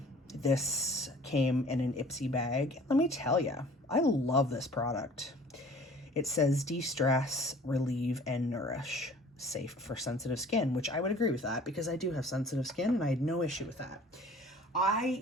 This came in an Ipsy bag. Let me tell you, I love this product. It says de-stress, relieve, and nourish. Safe for sensitive skin, which I would agree with that because I do have sensitive skin and I had no issue with that. I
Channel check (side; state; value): both; normal; correlation 0.49